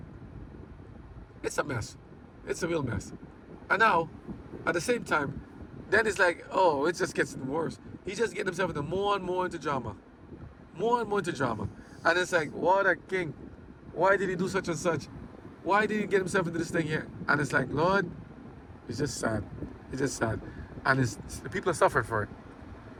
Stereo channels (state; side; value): identical; both; correlation 1.00